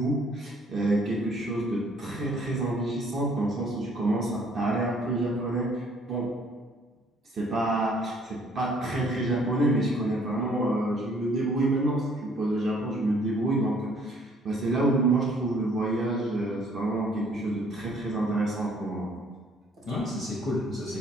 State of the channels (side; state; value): both; normal; correlation 0.60